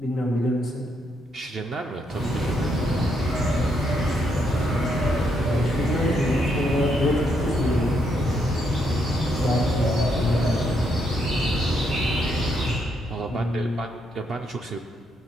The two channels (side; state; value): both; normal; correlation 0.76